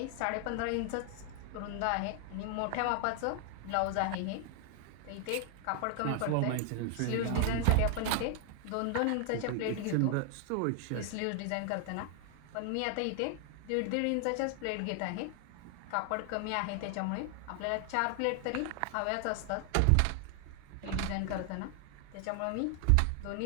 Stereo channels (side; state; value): both; different; correlation 0.00